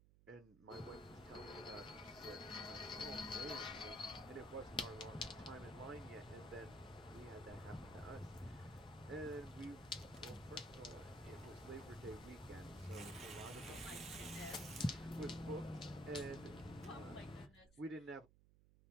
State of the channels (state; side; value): noise; right; hum, 22 dB below the sound